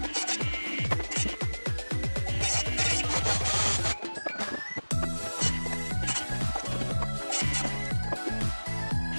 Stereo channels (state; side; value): inverted; both; correlation -1.00